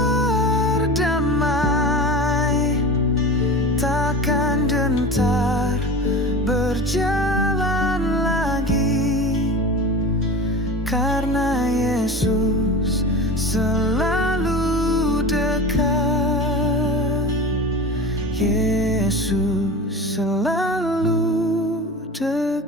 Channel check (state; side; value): normal; both; correlation 0.32